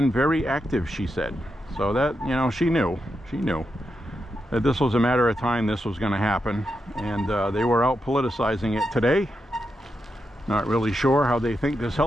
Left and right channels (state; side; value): normal; both; correlation 0.86